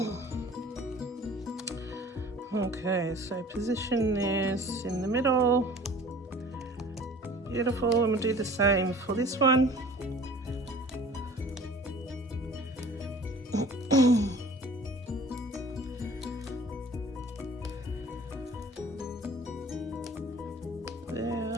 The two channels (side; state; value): both; normal; correlation 0.47